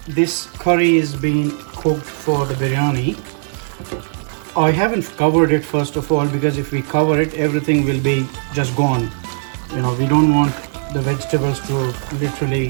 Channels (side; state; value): left; silent; 67 dB below the other